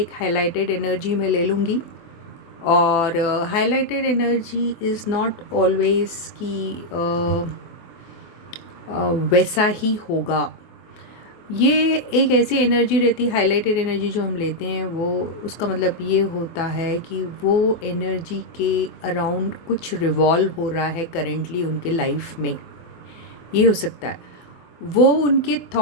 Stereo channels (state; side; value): late; right; 24 ms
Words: हाइलाइटेड एनर्जी में ले लूँगी, और highlighted energy is not always कि वैसा ही होगा। ये एक ऐसी एनर्जी रहती है, हाइलाइटेड एनर्जी जो हम लेते हैं, वो उसका मतलब ये होता है कि वो एनर्जी के अराउंड कुछ रिवॉल्व हो रहा है करेंटली उनके लाइफ में। ये हो सकता है, वो उनके